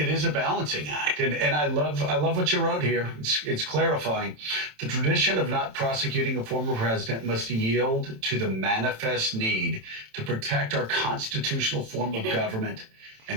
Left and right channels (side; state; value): left; late; 27 ms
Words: is a balancing act. And I love what you wrote here. It's clarifying. The tradition of not prosecuting a former president must yield to the manifest need to protect our constitutional form of government